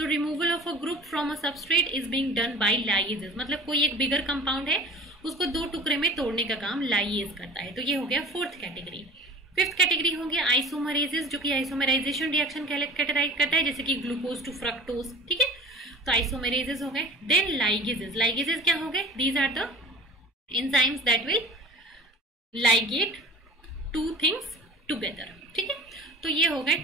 removal of a group from a substrate is being done by lyase, मतलब कोई एक बिगर कंपाउंड है उसको 2 टुकड़े में तोड़ने का काम लाइएज करता है। तो ये हो गया फोर्थ कैटेगरी। फिफ्थ कैटेगरी हो गया आइसोमरेसिस, जो कि आइसोमराइजेशन रिएक्शन कैटेगराइज करता है, जैसे कि ग्लूकोज टू फ्रक्टोज। ठीक है, तो आइसोमरेसिस हो गए। Then ligases. लाइगेजेस क्या हो गए? These are the enzymes that will ligate 2 things together. ठीक है, तो ये हो गए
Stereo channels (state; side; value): normal; both; correlation 0.42